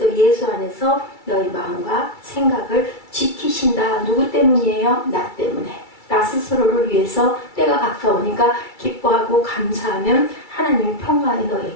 예수 안에서 너희 마음과 생각을 지키신다. 누구 때문이에요? 나 때문에. 나 스스로를 위해서 때가 가까우니까 기뻐하고 감사하면 하나님의 평강이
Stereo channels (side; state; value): right; late; 2.3 ms